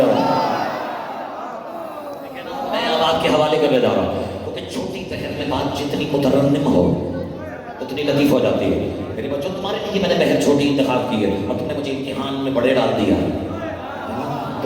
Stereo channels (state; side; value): identical; both; correlation 1.00